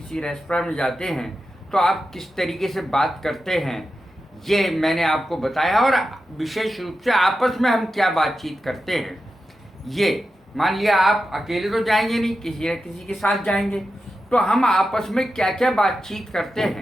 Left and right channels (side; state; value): both; normal; correlation 0.90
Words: रेस्टोरेंट में जाते हैं, तो आप किस तरीके से बात करते हैं, ये मैंने आपको बताया। और विशेष रूप से आपस में हम क्या बातचीत करते हैं, ये मान लिया आप अकेले तो जाएंगे नहीं, किसी न किसी के साथ जाएंगे, तो हम आपस में क्या क्या बातचीत करते